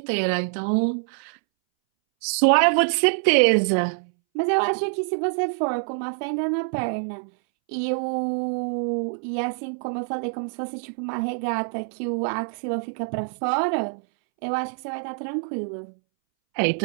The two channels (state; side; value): silent; left; 62 dB below the other